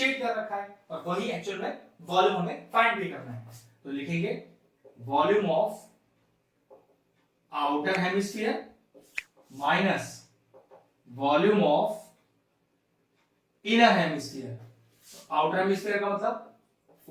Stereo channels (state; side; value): identical; both; correlation 1.00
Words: कर रखा है, और वही एक्चुअल में वॉल्यूम हमें फाइंड भी करना है। तो लिखेंगे volume of outer hemisphere minus volume of inner hemisphere. Outer hemisphere का मतलब